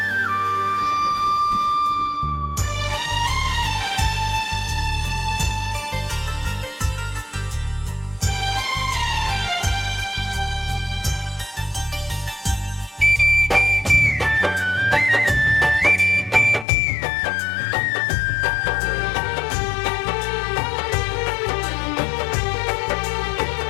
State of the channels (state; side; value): drops out; right; at 16.7 s